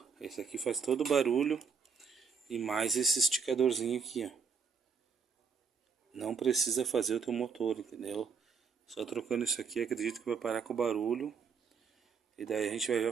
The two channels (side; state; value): left; quieter; 5.9 dB